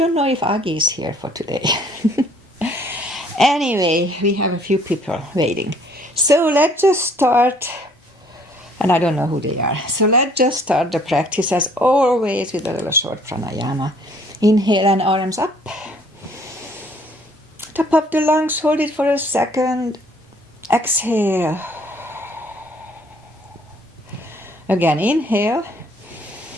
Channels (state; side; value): normal; both; correlation 0.60